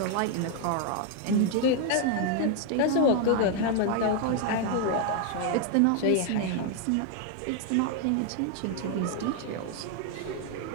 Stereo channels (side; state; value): both; different; correlation 0.00